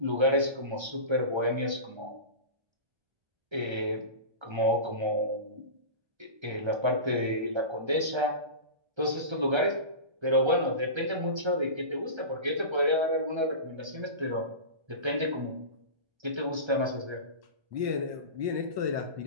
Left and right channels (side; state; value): left; late; 1.3 ms